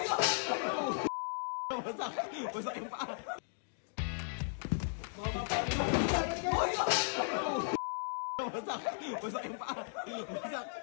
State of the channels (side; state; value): right; silent; digital silence